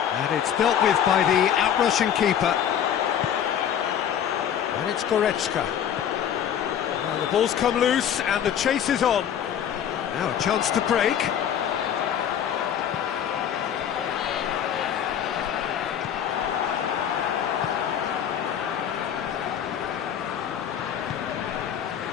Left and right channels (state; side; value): quieter; right; 9.3 dB